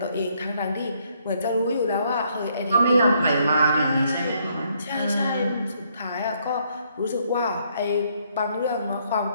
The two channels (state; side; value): inverted; both; correlation -0.71